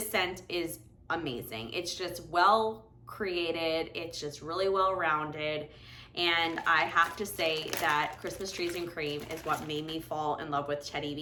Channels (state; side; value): identical; both; correlation 1.00